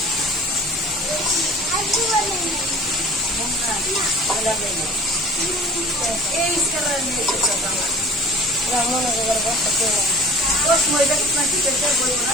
মনে করার বসা করে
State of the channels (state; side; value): normal; both; correlation 0.44